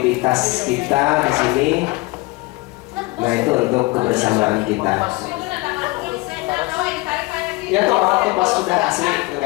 kita di sini. Nah, itu untuk kebersamaan kita. Ya, toh waktu pas sudah asli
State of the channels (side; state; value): right; quieter; 23.7 dB